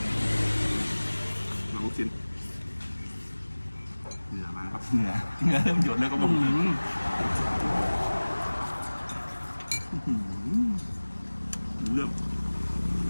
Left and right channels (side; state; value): both; inverted; correlation -1.00